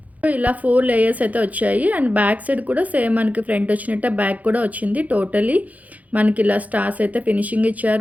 ఇలా 4 లేయర్స్ అయితే వచ్చాయి. అండ్ బ్యాక్ సైడ్ కూడా సేమ్ మనకి ఫ్రంట్ వచ్చినట్టే బ్యాక్ కూడా వచ్చింది. టోటలీ మనకి ఇలా స్టార్స్ అయితే ఫినిషింగ్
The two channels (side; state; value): left; late; 0.074 ms